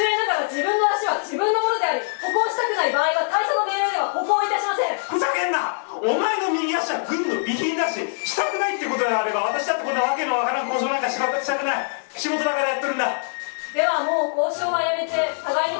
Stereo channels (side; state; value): right; silent; 63 dB below the other